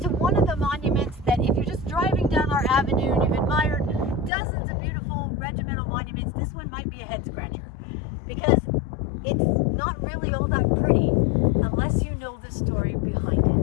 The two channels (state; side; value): drops out; right; at 4.3 s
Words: to one of the monuments that if you're just driving down our avenue and you've admired dozens of beautiful regimental monuments, this one might be a head scratcher because it's not really all that pretty unless you know the story behind